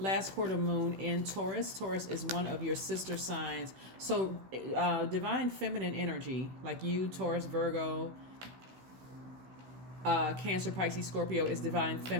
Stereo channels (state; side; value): late; left; 16 ms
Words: quarter moon in Taurus. Taurus is one of your sister signs. So divine feminine energy, like you, Taurus, Virgo, Cancer, Pisces, Scorpio, is divine